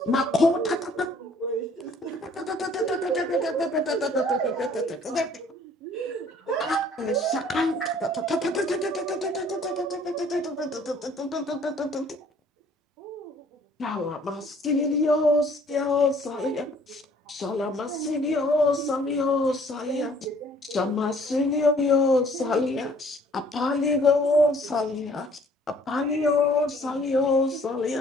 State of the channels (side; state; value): both; normal; correlation 0.57